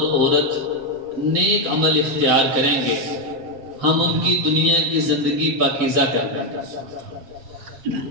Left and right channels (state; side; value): late; left; 7.6 ms